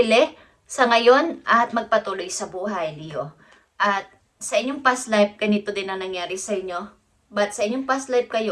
sa ngayon at magpatuloy sa buhay, Leo. At sa inyong past life, ganito din ang nangyari sa inyo. But sa inyong past life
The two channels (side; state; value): both; identical; correlation 1.00